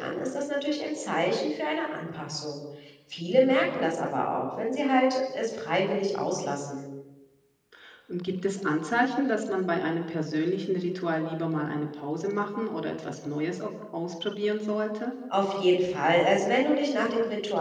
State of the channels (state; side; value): identical; both; correlation 1.00